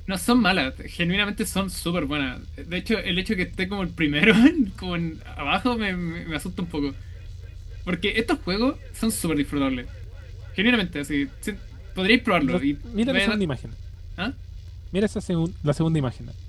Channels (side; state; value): both; identical; correlation 1.00